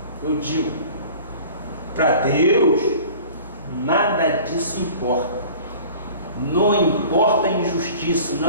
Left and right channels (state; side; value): inverted; both; correlation -0.44